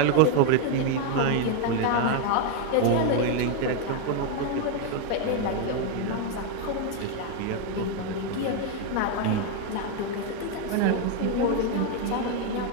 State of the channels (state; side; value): different; both; correlation 0.01